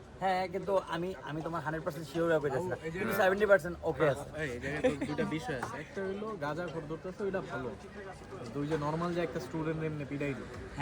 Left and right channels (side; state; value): both; identical; correlation 1.00